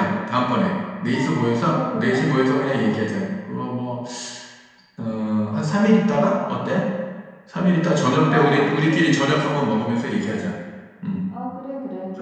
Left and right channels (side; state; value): both; identical; correlation 1.00